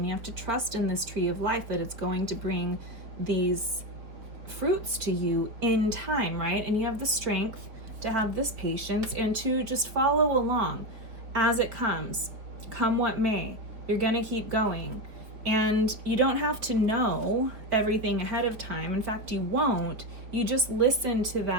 you have to trust in this tree of life that it's going to bring these fruits to you in time, right? And you have the strength to have this patience and to just follow along as it comes, come what may. You're gonna keep going. And you don't have to know everything ahead of time. In fact, you won't. You just listen to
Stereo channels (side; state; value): left; late; 4.2 ms